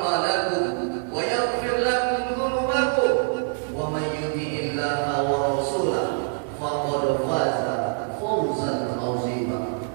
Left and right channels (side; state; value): left; silent; 62 dB below the other